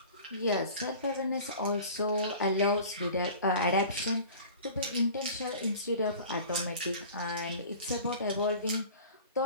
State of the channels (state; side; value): inverted; both; correlation -0.42